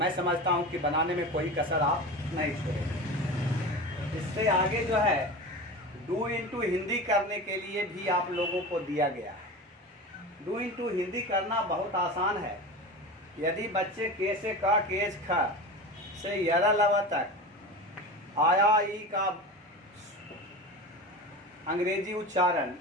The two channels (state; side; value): normal; both; correlation 0.29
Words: समझता हूं कि बनाने में कोई कसर आप नहीं छोड़ेंगे। इससे आगे जो है डू इंटू हिंदी करने के लिए भी आप लोगों को दिया गया है। डू इंटू हिंदी करना बहुत आसान है। यदि बच्चे के से का, केज ख से यरा लवा तक आया ई का अंग्रेजी उच्चारण